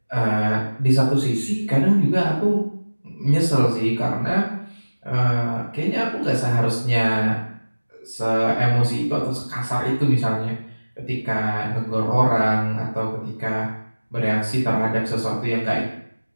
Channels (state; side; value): inverted; both; correlation -1.00